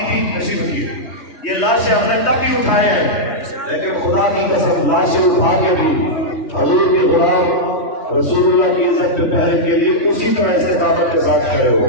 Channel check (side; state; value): right; late; 3.2 ms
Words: تھی تشریف کی یہ لاشیں ہم نے تب بھی اٹھائے ہیں لیکن خدا کی قسم لاشیں اٹھا کے بھی حضور کے غلام رسول اللہ کی عزت پہ پہرے کے لیے اسی طرح استقامت کے ساتھ کھڑے